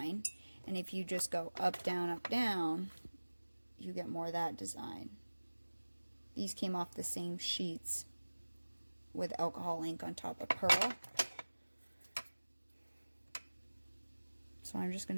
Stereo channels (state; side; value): inverted; both; correlation -1.00